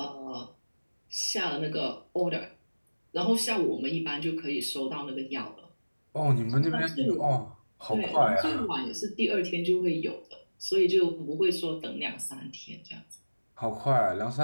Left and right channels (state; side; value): inverted; both; correlation -1.00